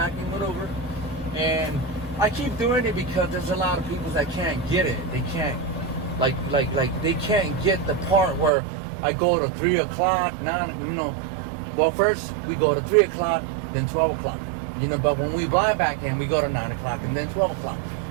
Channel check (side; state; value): left; drops out; at 8.5 s